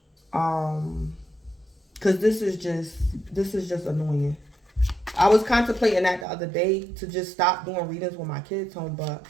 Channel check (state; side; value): drops out; left; at 6.2 s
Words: Cause this is just annoying. I was contemplating that the other day to just stop doing readings when my kids home, but